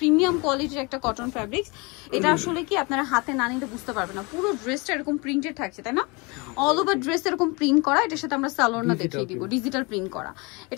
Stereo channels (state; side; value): quieter; right; 28.2 dB